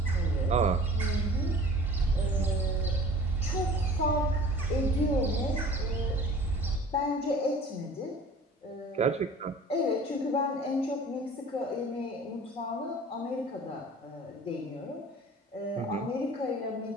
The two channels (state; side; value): normal; both; correlation 0.45